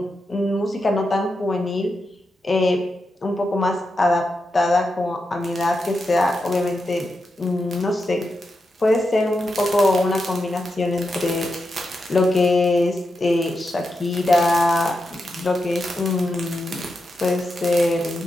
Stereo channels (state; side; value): normal; both; correlation 0.87